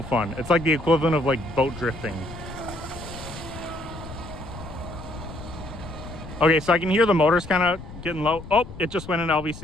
fun. It's like the equivalent of like boat drifting. Okay, so I can hear the motors kind of getting low. Oh, it just went in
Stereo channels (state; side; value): noise; left; rumble, 13 dB below the sound